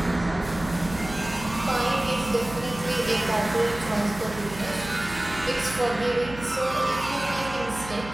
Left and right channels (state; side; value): noise; right; hum, 14 dB below the sound